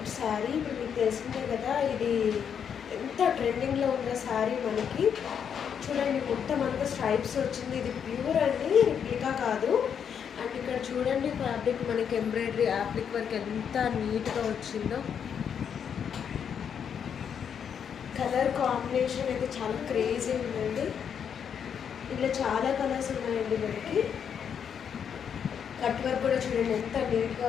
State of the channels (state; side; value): quieter; right; 7.7 dB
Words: శారీ. ఇప్పుడు మీకు తెలిసిందే కదా, ఇది ఎంత ట్రెండింగ్లో ఉన్న శారీ మనకి. చూడండి, మొత్తం అంతా స్ట్రైప్స్ వచ్చింది. ఇది ప్యూర్ అండి, రిప్లికా కాదు. అండ్ ఇక్కడ చూడండి ఫ్యాబ్రిక్ మనకి ఎంబ్రాయిడరీ యాప్లిక్ వర్క్ ఎంత నీట్గా వచ్చిందో. కలర్ కాంబినేషన్ అయితే చాలా క్రేజీ ఉందండి. ఇలా చాలా కలర్స్ ఉన్నాయండి మనకి. కట్ వర్క్ కూడా చూడండి ఎంత నీట్గా